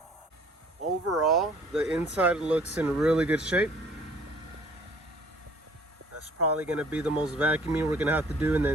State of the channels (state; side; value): normal; both; correlation 0.55